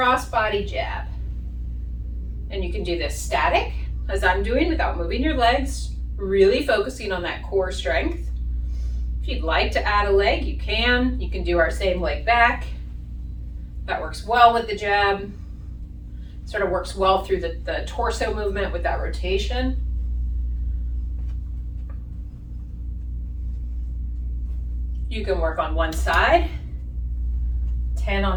body jab. And you can do this static, as I'm doing, without moving your legs, really focusing on that core strength. If you'd like to add a leg, you can. You can do our same leg back. That works well with the jab. Sort of works well through the torso movement with that rotation. You can work on one side, 10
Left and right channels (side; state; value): both; identical; correlation 1.00